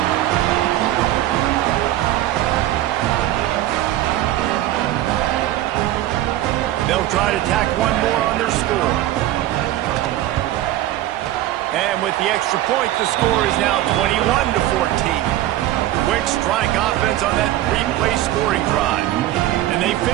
They'll try to tack one more on their score. And with the extra point, the score is now 21-14. Quick strike offense on that three-play scoring drive. And they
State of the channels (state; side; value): quieter; left; 14.2 dB